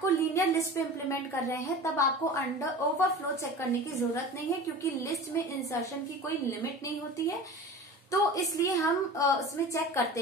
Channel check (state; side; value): normal; both; correlation 0.36